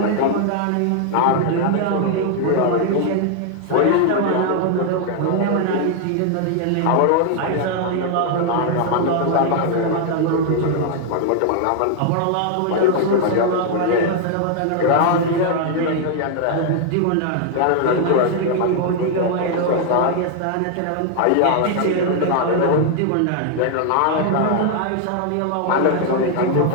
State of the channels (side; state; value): both; different; correlation 0.00